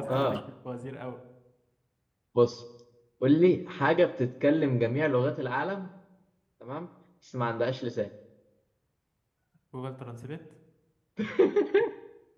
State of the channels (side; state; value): both; identical; correlation 1.00